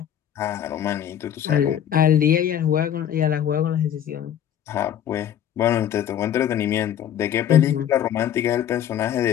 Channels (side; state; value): right; quieter; 10.0 dB